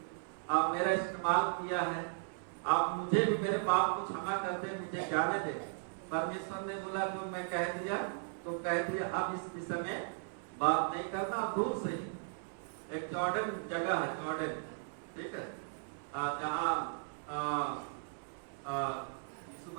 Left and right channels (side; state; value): left; silent; 53 dB below the other